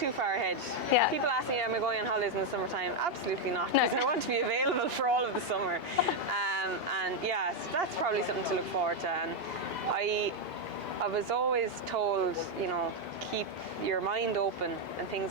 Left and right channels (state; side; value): normal; both; correlation 0.02